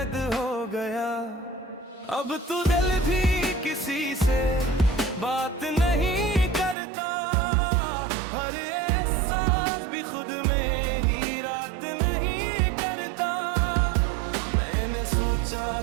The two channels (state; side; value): drops out; left; at 6.8 s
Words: हो गया। अब तू दिल भी किसी से बात नहीं करता, हर एहसास भी खुद में ही रात नहीं करता। मैंने सोचा